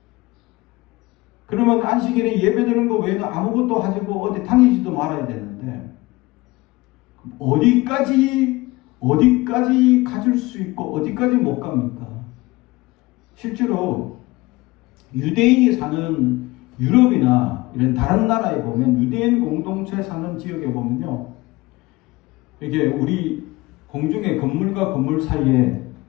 그러면 안식일에 예배 드리는 거 외에는 아무것도 하지고 어디 다니지도 말아야 되는데 어디까지 가질 수 있고 어디까지 못 갑니까? 실제로 유대인이 사는 유럽이나 이런 다른 나라에 보면 유대인 공동체 사는 지역에 보면요, 이게 우리 공중에 건물과 건물 사이에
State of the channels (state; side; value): quieter; right; 21.0 dB